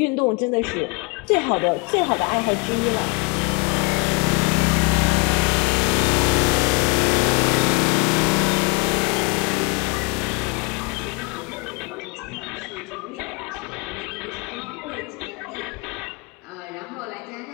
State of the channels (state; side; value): quieter; right; 31.3 dB